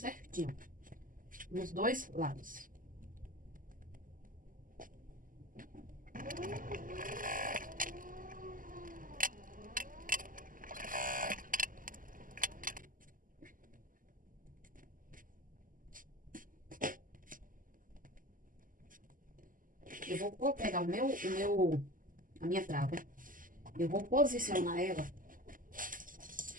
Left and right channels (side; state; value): left; late; 0.40 ms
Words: Nos dois lados. Eu vou pegar a minha trava. Eu vou posicionar ela.